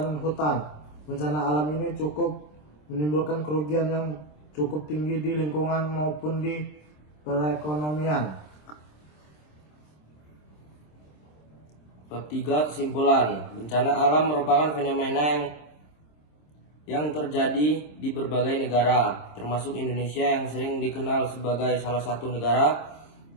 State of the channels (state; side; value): late; right; 26 ms